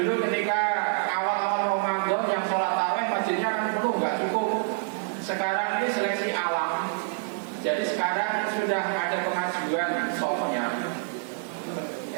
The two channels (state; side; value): silent; left; digital silence